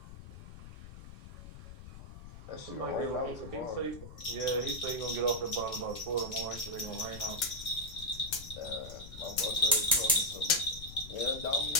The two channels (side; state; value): left; noise; rumble, 14 dB below the sound